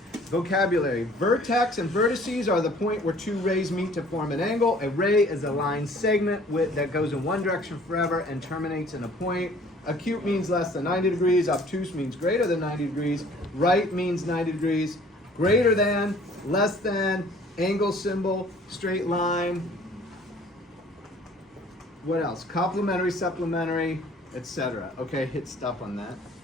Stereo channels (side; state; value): both; normal; correlation 0.54